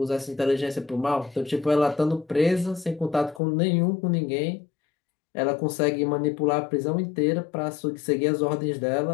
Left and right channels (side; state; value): right; drops out; at 3.4 s